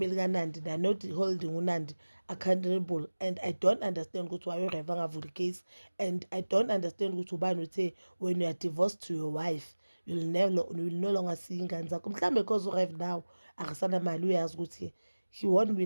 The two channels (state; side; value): inverted; both; correlation -1.00